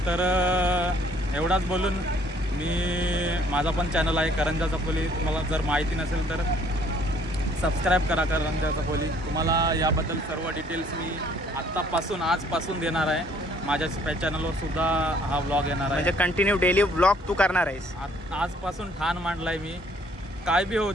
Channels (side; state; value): both; normal; correlation 0.61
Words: तर एवढाच बोलून माझा पण चॅनल आहे करंजा चपोली. तुम्हाला जर माहिती नसेल तर सबस्क्राईब करा करंजा चपोली. तुम्हाला याबद्दल सर्व डिटेल्स मी आजपासून देणार आहे. माझ्या चॅनलवर सुद्धा हा व्लॉग येणार आहे. म्हणजे कंटिन्यू डेली व्लॉग तू करणार आहेस? आजपासून ठाण मांडलाय मी. काय बी होऊ